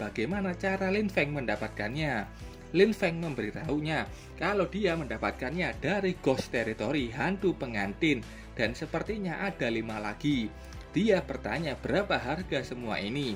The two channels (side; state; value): both; identical; correlation 1.00